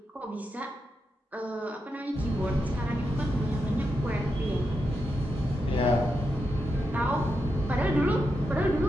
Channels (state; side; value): normal; both; correlation 0.86